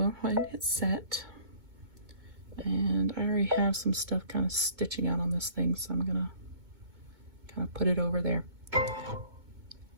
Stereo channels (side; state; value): left; late; 2.2 ms